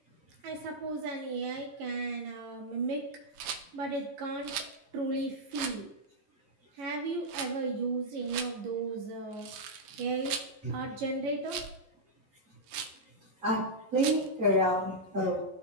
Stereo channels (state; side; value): late; left; 11 ms